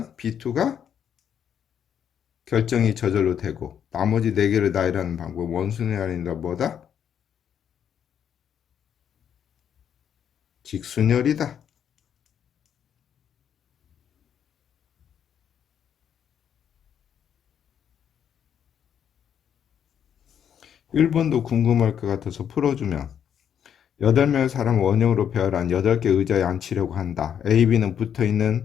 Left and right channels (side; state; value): right; quieter; 8.7 dB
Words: B2가 결정이 저절로 되고 나머지 4개를 나열하는 방법 원순이 아니라 뭐다? 직순열이다. 1번도 궁금할 것 같아서 풀어주면 8명의 사람을 원형으로 배열한 8개 의자에 앉히려고 한다. A, B는